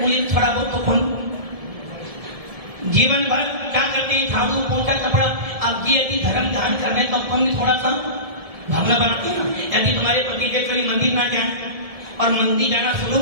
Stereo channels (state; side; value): late; left; 1.7 ms